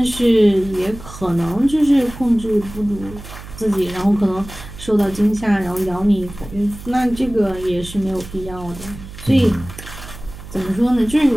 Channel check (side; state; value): right; noise; hum, 14 dB below the sound